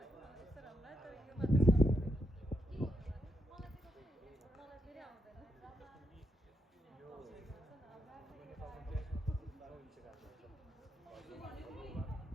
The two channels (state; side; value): normal; both; correlation 0.81